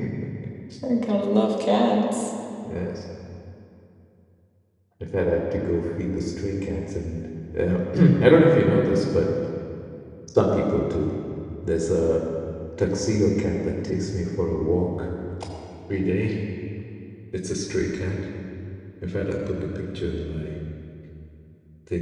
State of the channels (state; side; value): identical; both; correlation 1.00